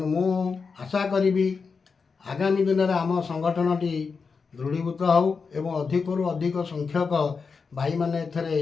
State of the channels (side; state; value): right; quieter; 5.1 dB